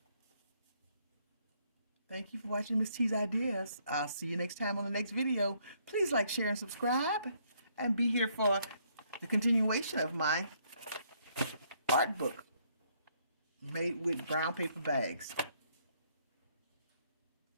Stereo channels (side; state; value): both; inverted; correlation -0.69